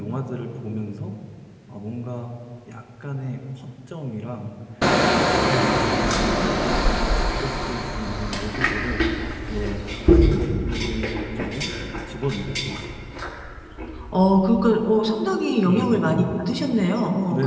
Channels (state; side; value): identical; both; correlation 1.00